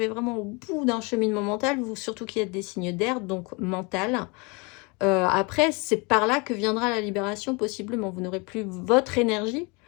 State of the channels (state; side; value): quieter; right; 29.6 dB